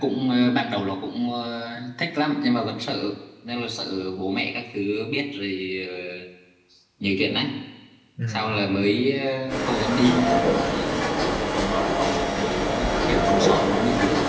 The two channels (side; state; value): both; identical; correlation 1.00